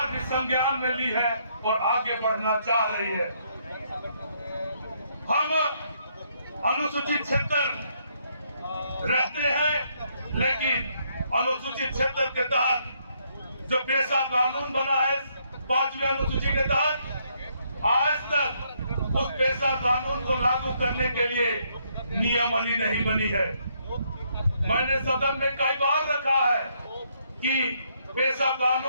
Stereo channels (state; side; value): inverted; both; correlation -0.72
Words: भी संज्ञान में ली है और आगे बढ़ना चाह रही है। हम अनुसूचित क्षेत्र रहते हैं, लेकिन अनुसूचित क्षेत्र के तहत जो पेशा कानून बना है 5वीं अनुसूची के तहत, आज तक उस पेशा कानून को लागू करने के लिए नियमावली नहीं बनी है। मैंने सदन में कई बार रखा है कि पेशा